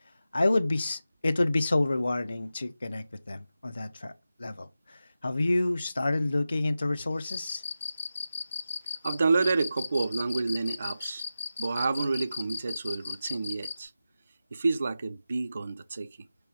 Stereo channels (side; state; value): both; inverted; correlation -0.93